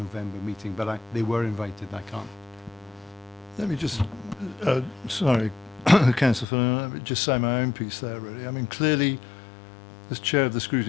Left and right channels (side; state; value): right; drops out; at 6.5 s